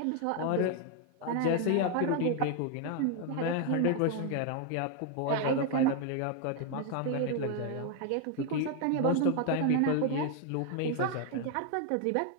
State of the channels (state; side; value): different; both; correlation 0.01